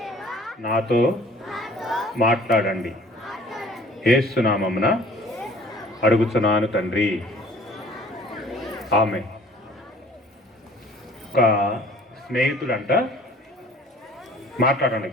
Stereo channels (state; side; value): normal; both; correlation 0.52